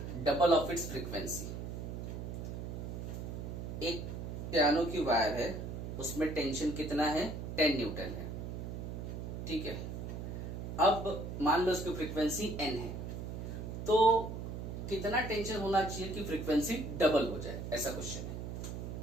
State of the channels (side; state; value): right; noise; hum, 6 dB below the sound